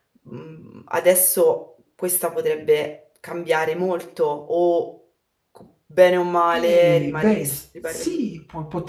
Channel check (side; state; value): both; identical; correlation 1.00